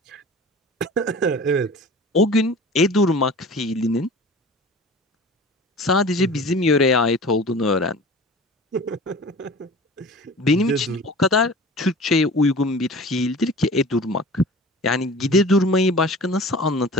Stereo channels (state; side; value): normal; both; correlation 0.40